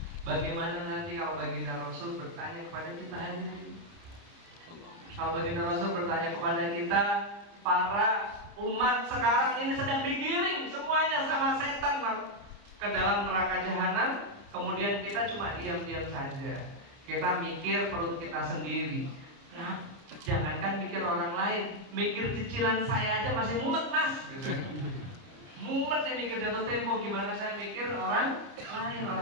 Bagaimana nanti kalau baginda Rasul bertanya kepada kita hadirin? Kalau baginda Rasul bertanya kepada kita, para umat sekarang ini sedang digiring semuanya sama setan ke dalam neraka jahanam. kemudian kita cuma diam-diam saja. Kita mikir perut kita sendiri. Nah, jangankan mikir orang lain, mikir cicilan saya aja masih mumet mas. Gitu. Mumet ya mikir jatuh tempo, gimana saya mikir orang lain.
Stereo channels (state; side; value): late; left; 30 ms